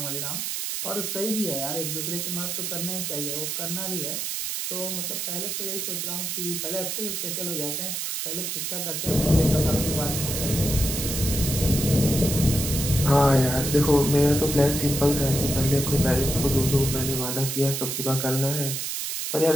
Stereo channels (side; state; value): right; noise; hiss, 3 dB below the sound